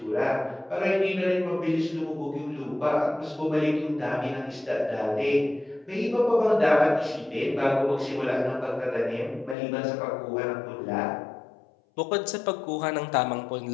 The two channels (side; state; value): right; drops out; at 9.6 s